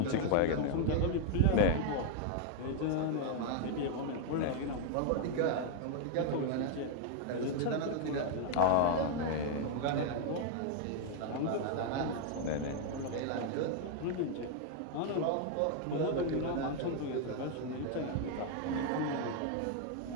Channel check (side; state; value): both; different; correlation 0.00